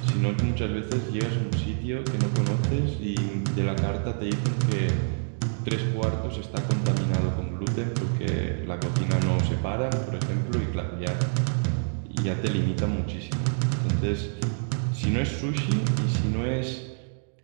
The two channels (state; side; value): silent; left; digital silence